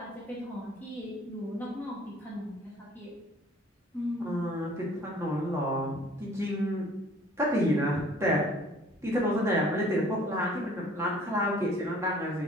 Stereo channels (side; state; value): both; normal; correlation 0.54